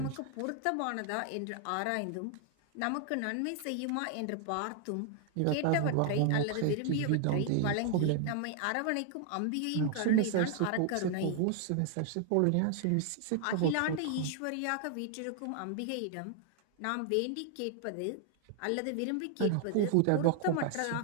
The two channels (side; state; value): both; different; correlation 0.00